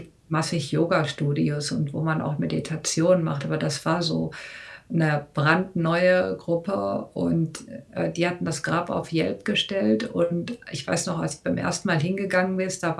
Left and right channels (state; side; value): identical; both; correlation 1.00